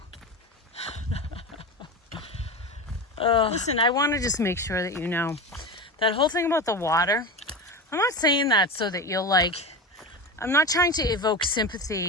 Listen, I want to just make sure that you know that whole thing about the water. I'm not saying that so that you'll like, I'm not trying to evoke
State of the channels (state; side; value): normal; both; correlation 0.24